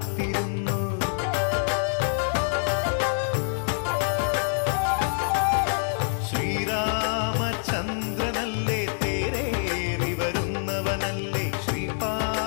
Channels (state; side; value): silent; right; 61 dB below the other